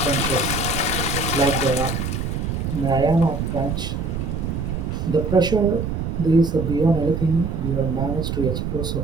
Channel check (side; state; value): right; noise; rumble, 3 dB below the sound